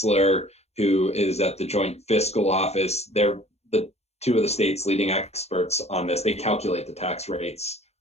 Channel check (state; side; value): late; right; 0.31 ms